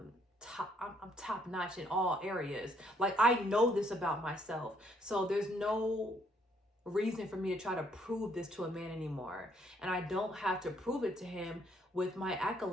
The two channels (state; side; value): normal; both; correlation 0.69